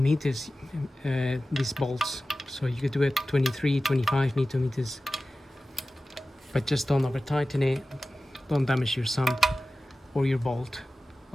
meters, these bolts. So you could do it 23, 25 Newton meters, but just don't over tighten it. Don't damage your sump or your bolt,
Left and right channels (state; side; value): normal; both; correlation 0.95